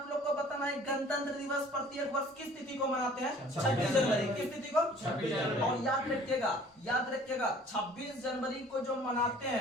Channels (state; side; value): normal; both; correlation 0.51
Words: लोग को बताना है, गणतंत्र दिवस प्रत्येक वर्ष किस तिथि को मनाते हैं? 26 जनवरी। किस तिथि को? 26 जनवरी। और याद रखिएगा 26 जनवरी को जो मनाते